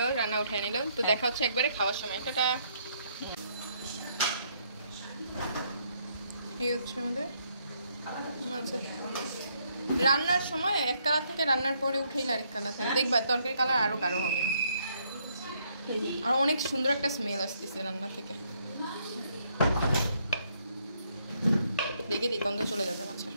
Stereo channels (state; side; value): inverted; both; correlation -0.72